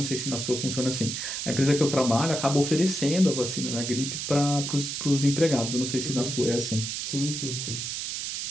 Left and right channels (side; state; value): right; noise; hiss, 4 dB below the sound